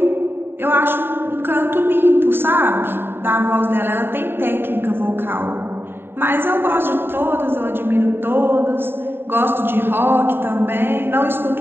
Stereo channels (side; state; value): left; late; 0.11 ms